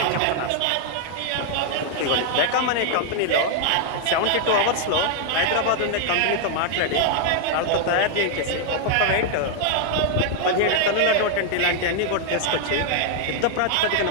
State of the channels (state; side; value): different; both; correlation 0.00